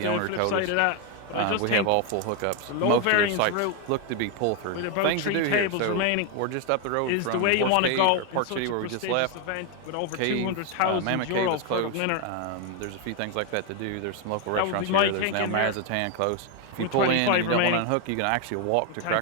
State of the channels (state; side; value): different; both; correlation 0.01